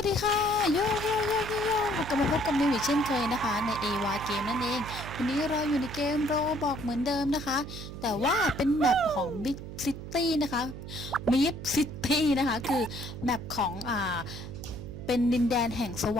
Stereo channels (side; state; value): right; noise; hum, 10 dB below the sound